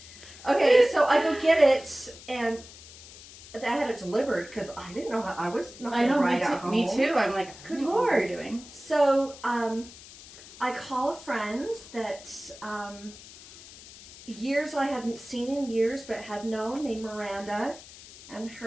Okay, so I go get it, and I had it delivered because I didn't know how I was not going to ride at home. Me too. I'm like, good Lord, Lord. what are you doing? So I call a friend that years I hadn't seen in years, but had known, named Miranda, and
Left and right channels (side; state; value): left; noise; hiss, 18 dB below the sound